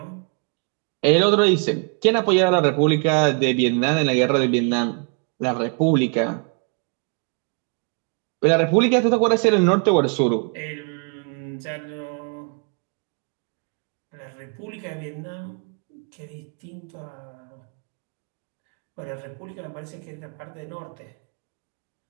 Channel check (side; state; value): left; quieter; 39.7 dB